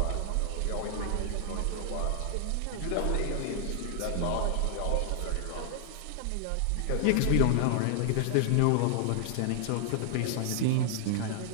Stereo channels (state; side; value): different; both; correlation 0.00